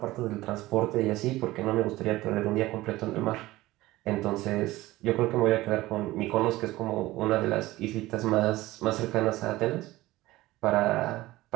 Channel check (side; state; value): left; quieter; 17.9 dB